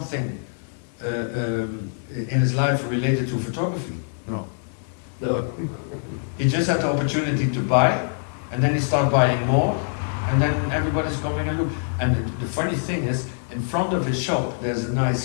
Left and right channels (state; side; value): silent; right; digital silence